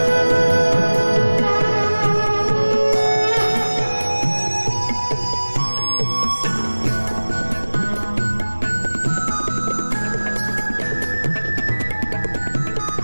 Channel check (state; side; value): inverted; both; correlation -1.00